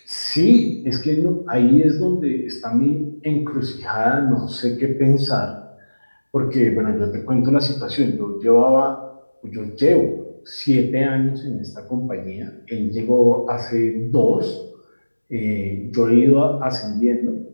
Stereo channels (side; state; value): both; inverted; correlation -1.00